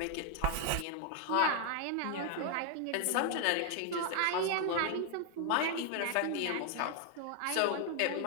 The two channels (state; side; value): different; both; correlation 0.00